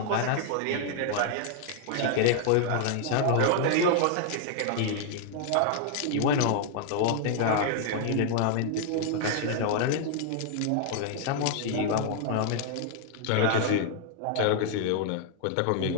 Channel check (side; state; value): both; different; correlation 0.00